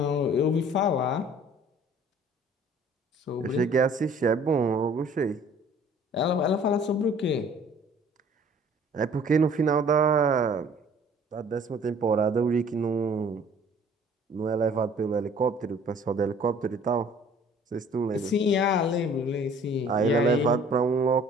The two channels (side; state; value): both; normal; correlation 0.53